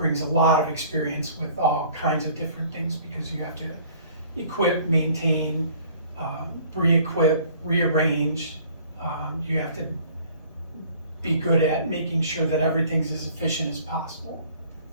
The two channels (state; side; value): inverted; both; correlation -0.53